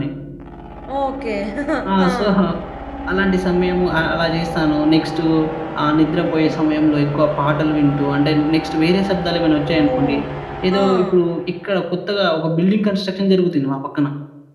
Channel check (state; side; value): identical; both; correlation 1.00